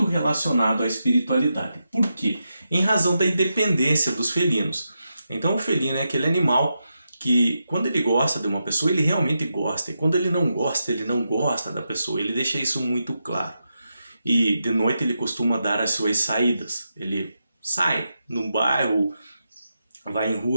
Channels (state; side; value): inverted; both; correlation -0.87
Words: relacionado à espiritualidade. Por quê? Em razão da independência dos felinos. Então o felino é aquele animal que quando ele gosta de uma pessoa, ele realmente gosta. E quando ele não gosta da pessoa. Ele deixa isso muito claro. E de noite ele costuma dar as suas saídas. Ele sai num bairro, vai em